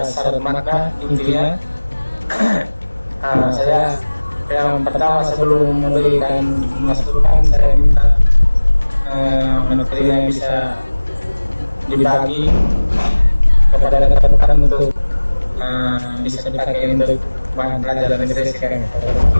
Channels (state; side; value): inverted; both; correlation -1.00